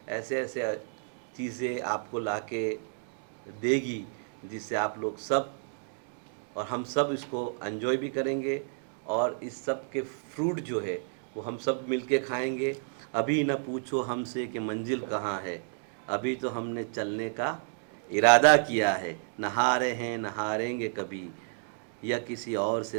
ऐसे ऐसे चीज़ें आपको लाके देगी जिससे आप लोग सब और हम सब इसको एंजॉय भी करेंगे, और इस सब के फ्रूट जो है वो हम सब मिलके खाएंगे। अभी ना पूछो हमसे कि मंजिल कहाँ है, अभी तो हमने चलने का इरादा किया है। नहारे हैं नहारेंगे कभी, या किसी और से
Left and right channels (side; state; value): left; silent; digital silence